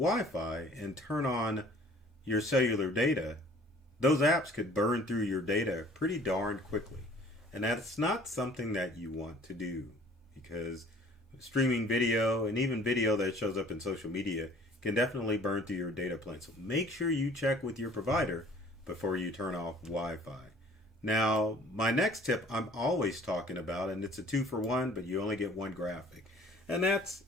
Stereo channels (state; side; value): normal; both; correlation 0.52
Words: and turn on your cellular data, those apps could burn through your data pretty darn quickly. And that's not something that you want to do because streaming video and even video that shows up in social media can definitely burn through your data plan. So make sure you check with your provider before you turn off Wi-Fi. Now, my next tip I'm always talking about, and it's a 2-for-1, but you only get one graphic. And that's